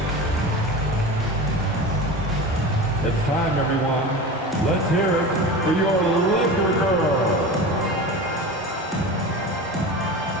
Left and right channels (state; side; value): normal; both; correlation 0.30